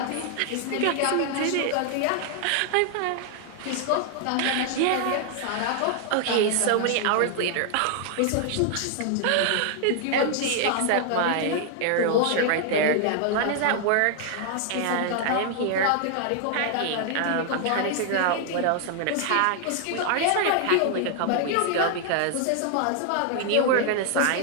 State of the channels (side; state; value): both; different; correlation 0.00